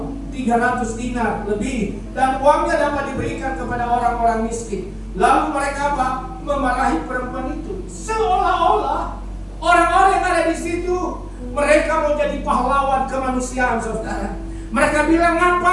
300 dinar lebih dan uangnya dapat diberikan kepada orang-orang miskin. Lalu mereka apa? Memarahi perempuan itu. Seolah-olah orang-orang yang ada di situ mereka mau jadi pahlawan kemanusiaan saudara. Mereka bilang,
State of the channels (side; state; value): both; identical; correlation 1.00